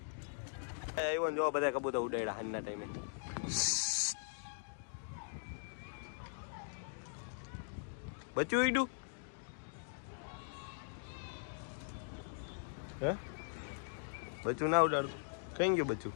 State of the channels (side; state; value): right; silent; digital silence